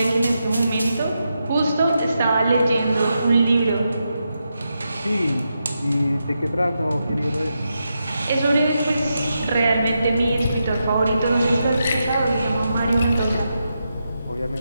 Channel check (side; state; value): both; inverted; correlation -0.86